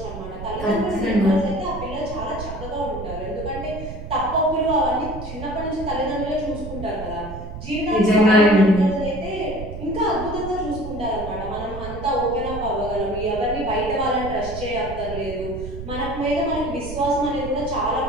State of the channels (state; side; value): noise; right; rumble, 9 dB below the sound